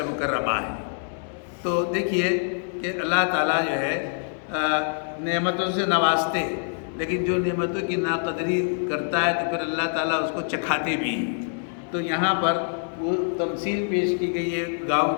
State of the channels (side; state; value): right; silent; 62 dB below the other